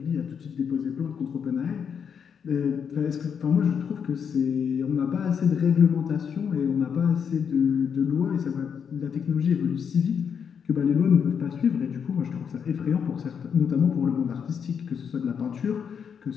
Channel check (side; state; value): right; quieter; 7.1 dB